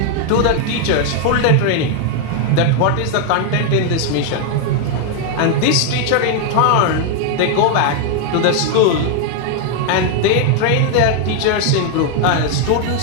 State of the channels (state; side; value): different; both; correlation 0.00